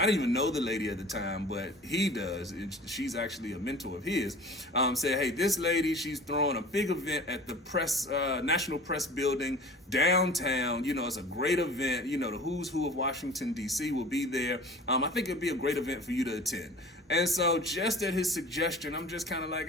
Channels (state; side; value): normal; both; correlation 0.42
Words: didn't even know the lady at the time, but he does, she's actually a mentor of his, said, hey, this lady, she's throwing a big event at the National Press Building downtown. It's a great event. The who's who of Washington, D.C. will be there. I think it'd be a great event for you to attend. And so just at his suggestion, I'm just kind of